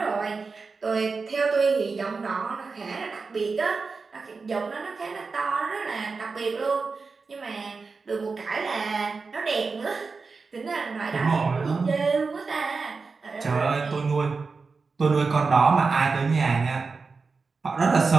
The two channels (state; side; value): quieter; left; 4.5 dB